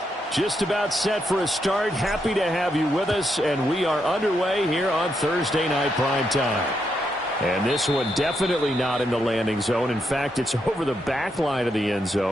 Just about set for a start. Happy to have you with us, and we are underway here on Thursday Night Prime Time. And this one definitely not in the landing zone. In fact, it's over the back line of the end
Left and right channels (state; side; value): normal; both; correlation 0.80